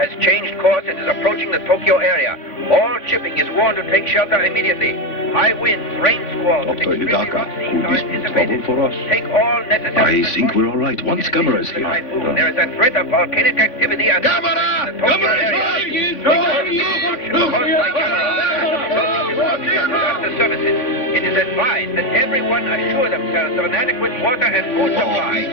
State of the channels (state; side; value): late; right; 3.5 ms